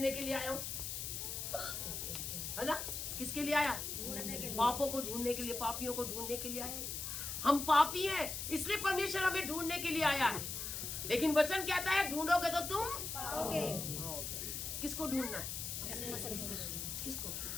के लिए आया हूँ, है ना? किसके लिए आया? पापों को ढूंढने के लिए, पापियों को ढूंढने के लिए आया। हम पापी हैं, इसलिए परमेश्वर हमें ढूंढने के लिए आया है। लेकिन वचन कहता है ढूंढोगे तो तुम पाओगे। किसको ढूंढना है? किसको?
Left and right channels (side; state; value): left; noise; hiss, 4 dB below the sound